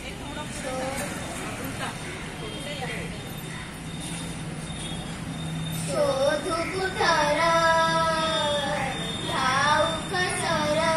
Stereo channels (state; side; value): identical; both; correlation 1.00